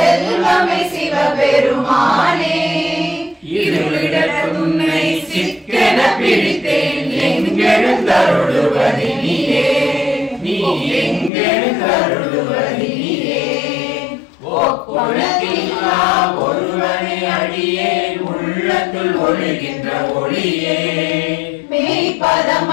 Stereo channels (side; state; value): right; drops out; at 11.3 s